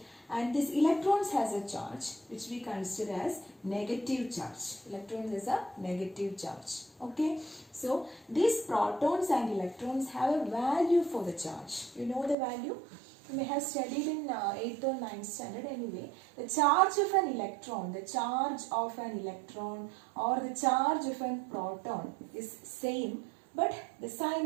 And this electrons has a charge which we consider as negative charge. Electrons has a negative charge. Okay. So these protons and electrons have a value for the charge. You know the value? You may have studied in 8th or 9th standard anyway. The charge of an electron, the charge of an electron or the charge of a proton is same, but the sign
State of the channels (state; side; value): drops out; left; at 12.4 s